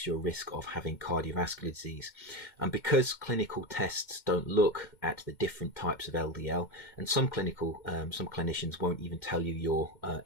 your risk of having cardiovascular disease. And because clinical tests don't look at the different types of LDL, and some clinicians won't even tell you your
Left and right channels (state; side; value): late; right; 2.1 ms